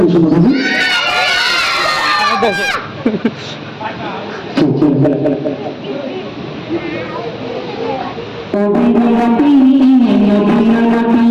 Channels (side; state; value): both; identical; correlation 1.00